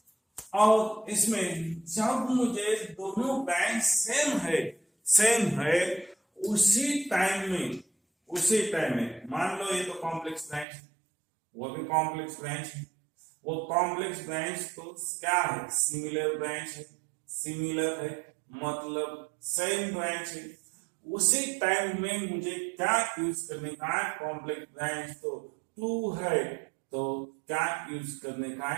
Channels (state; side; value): drops out; left; at 10.7 s